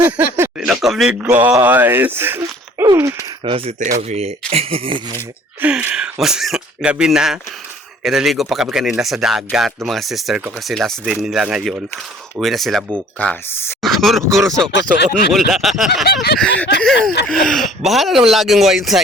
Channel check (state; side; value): normal; both; correlation 0.53